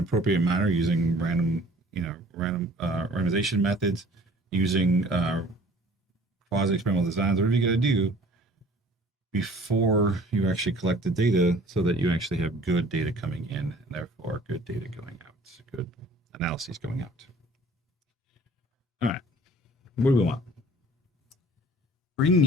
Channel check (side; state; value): both; normal; correlation 0.50